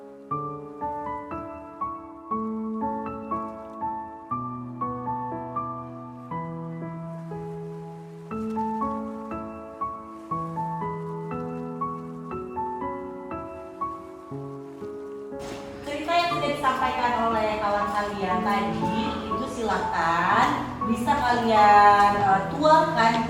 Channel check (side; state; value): both; identical; correlation 1.00